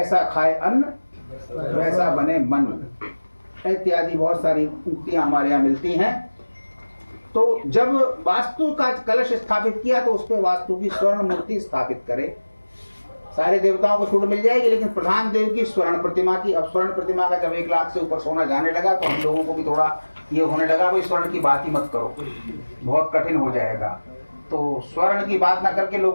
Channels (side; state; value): both; inverted; correlation -1.00